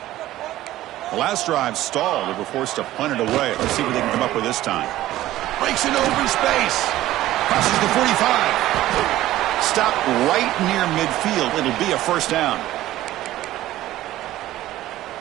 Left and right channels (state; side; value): quieter; left; 15.0 dB